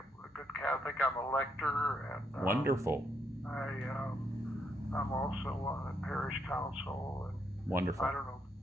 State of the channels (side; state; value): both; normal; correlation 0.76